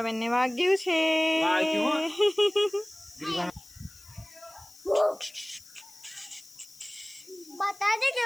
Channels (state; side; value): noise; left; hiss, 22 dB below the sound